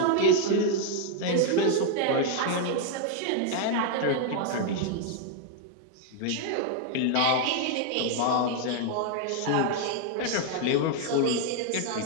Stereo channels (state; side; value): different; both; correlation 0.00